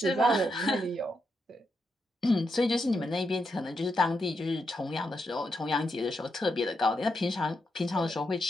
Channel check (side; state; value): both; normal; correlation 0.83